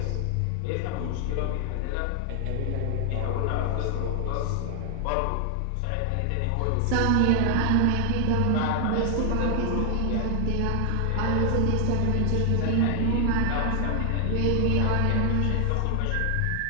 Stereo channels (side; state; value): both; different; correlation 0.00